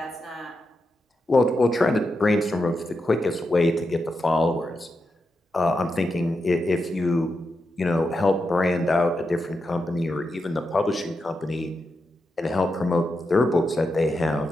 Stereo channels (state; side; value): normal; both; correlation 0.87